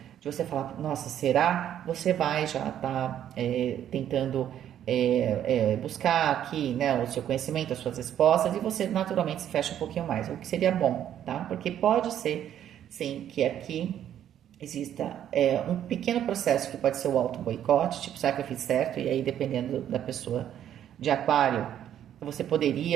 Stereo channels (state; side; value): quieter; left; 10.5 dB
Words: de você falar, nossa, será? Você vai já estar tentando buscar aqui, né, o seu conhecimento, as suas respostas, e você naturalmente se fecha um pouquinho mais, o que seria bom, tá? Porque pode ser, sim, que aqui exista um pequeno processo que pode ser o auto-boicote, tipo, será que eu fiz certo? E aí, dependendo da pessoa de aquário, você